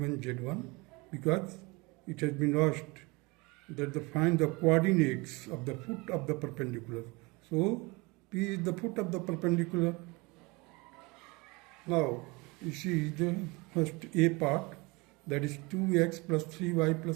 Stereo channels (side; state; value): left; quieter; 25.7 dB